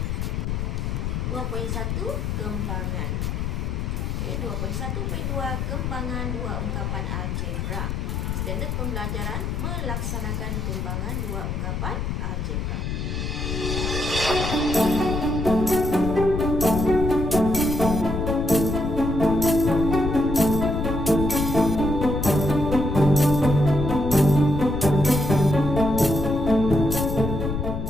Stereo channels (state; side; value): noise; left; rumble, 2 dB below the sound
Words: 2.1 kembangan. Okey, 2.1.2 kembangan dua ungkapan algebra. Standard pembelajaran melaksanakan kembangan dua ungkapan algebra.